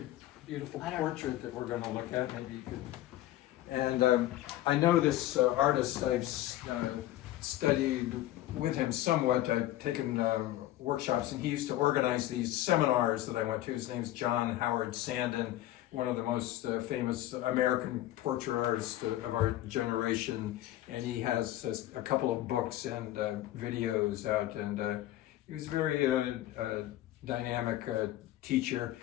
beautiful portrait that we're going to look at. Maybe you could. And I know this artist. I've studied with him somewhat. I've taken workshops, and he used to organize these seminars that I went to. His name's John Howard Sandon, one of the most famous American portrait artists of our generation, and he has a couple of books and videos out, and he was a very dynamic teacher.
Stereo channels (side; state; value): right; quieter; 14.6 dB